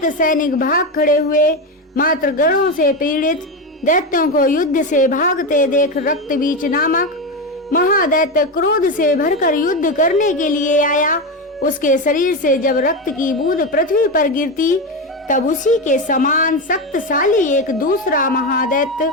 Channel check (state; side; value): normal; both; correlation 0.15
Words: सैनिक भाग खड़े हुए। मात्र गणों से पीड़ित दैत्यों को युद्ध से भागते देख रक्तबीज नामक महादैत्य क्रोध से भरकर युद्ध करने के लिए आया। उसके शरीर से जब रक्त की बूंद पृथ्वी पर गिरती तब उसी के समान शक्तिशाली एक दूसरा महादैत्य